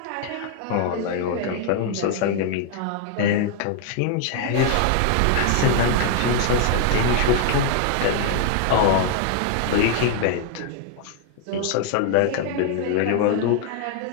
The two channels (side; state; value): both; different; correlation 0.00